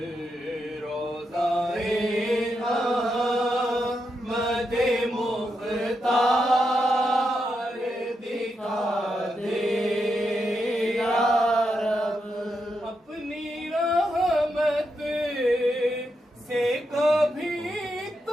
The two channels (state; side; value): normal; both; correlation 0.84